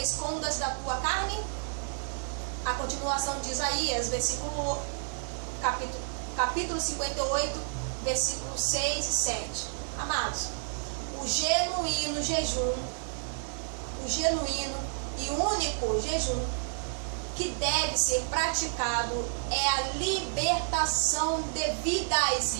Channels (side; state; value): left; silent; digital silence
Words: da tua carne? A continuação de Isaías, capítulo 58, versículos 6 e 7. Amados, o genuíno jejum, o genuíno e único jejum que deve ser praticado é a libertação devidas